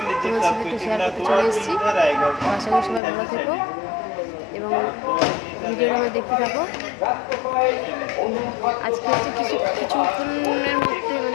তোমাদের সাথে একটু শেয়ার করতে চলে এসেছি। আশা করি সবাই ভালো থেকো এবং ভিডিওটা আমার দেখতে থাকো। আজকে হচ্ছে কিছুক্ষণের মধ্যে,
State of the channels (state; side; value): drops out; right; at 3.0 s